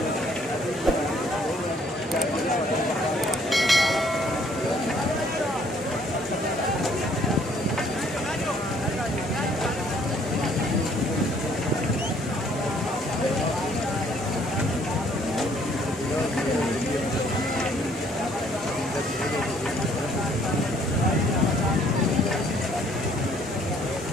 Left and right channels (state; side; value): normal; both; correlation 0.62